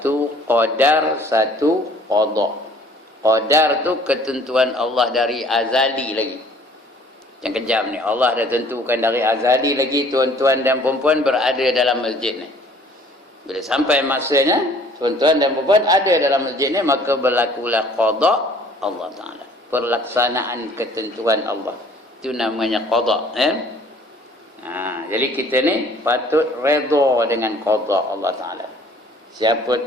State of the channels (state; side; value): normal; both; correlation 0.55